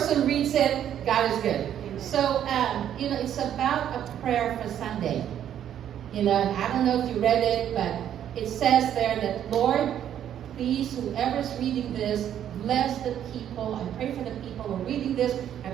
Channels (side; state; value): left; quieter; 10.2 dB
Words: reads it, God is good. So, it's about a prayer for Sunday. And I don't know if you read it, but it says there that, Lord, please, whoever's reading this, bless the people. I pray for the people who are reading this. I